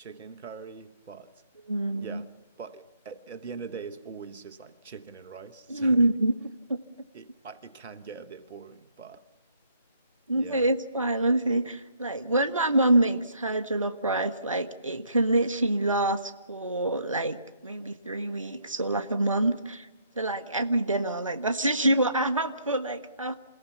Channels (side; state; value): both; inverted; correlation -0.69